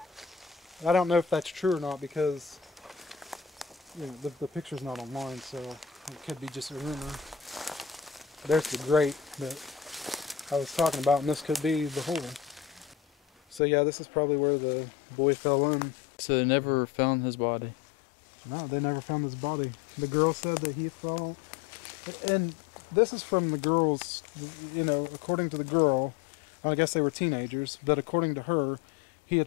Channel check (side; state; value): right; drops out; at 13.6 s